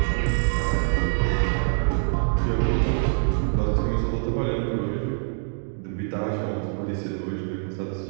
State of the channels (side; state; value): left; silent; 62 dB below the other